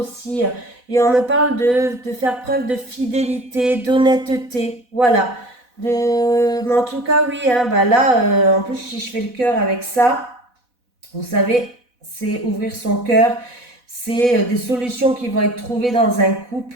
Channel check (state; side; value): late; left; 4.1 ms